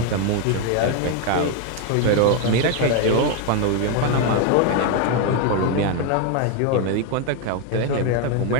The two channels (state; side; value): different; both; correlation 0.01